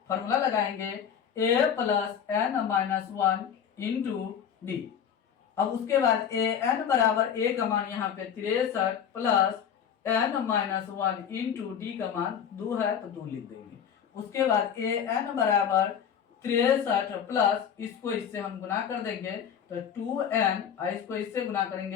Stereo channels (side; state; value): right; quieter; 8.2 dB